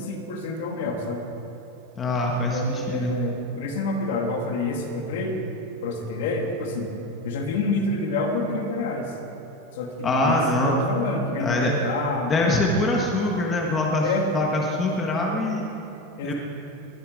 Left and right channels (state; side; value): normal; both; correlation 0.21